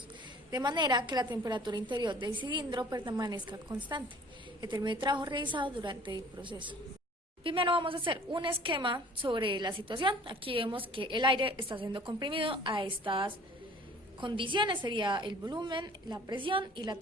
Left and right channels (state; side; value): normal; both; correlation 0.50